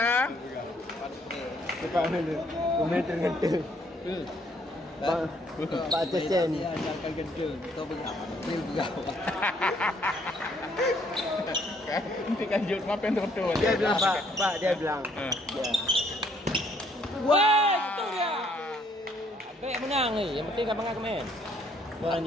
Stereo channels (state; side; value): normal; both; correlation 0.66